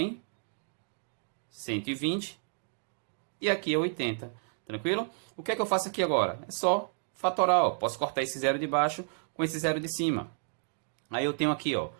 120. E aqui é 80. Tranquilo? O que é que eu faço aqui agora? É só fatorar, ó. Posso cortar esse zero de baixo com esse zero de cima. Aí eu tenho aqui, ó,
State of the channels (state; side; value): silent; left; 57 dB below the other